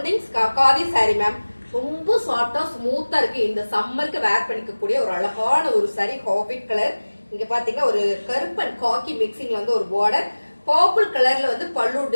khadi sorry ma'am. ரொம்ப சாஃப்டா ஸ்மூத்தா இருக்கு. இந்த சம்மருக்கு வேர் பண்ணிக்கக்கூடிய ஒரு அழகான ஒரு சாரி. Habit colour. இங்க பாத்தீங்கன்னா ஒரு கருப்பன் காக்கி மிக்சிங்ல வந்து ஒரு பார்டர். பர்பிள் கலர்ல வந்து பல்லு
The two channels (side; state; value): both; inverted; correlation -1.00